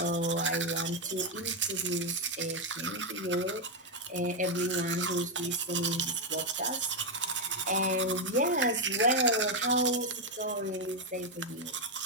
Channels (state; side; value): normal; both; correlation 0.03